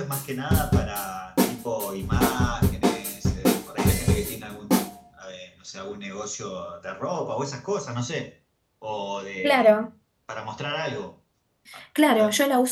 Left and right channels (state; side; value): identical; both; correlation 1.00